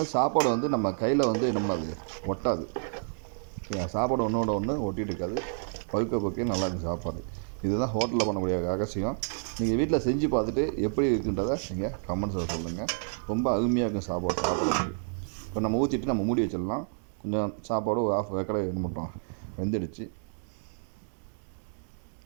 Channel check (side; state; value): left; silent; digital silence